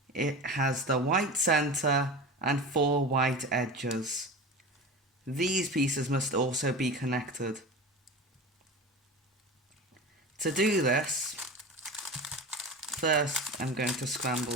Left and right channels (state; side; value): normal; both; correlation 0.30